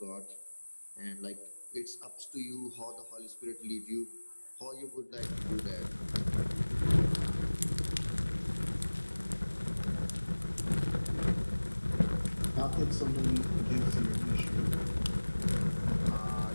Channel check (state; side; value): inverted; both; correlation -1.00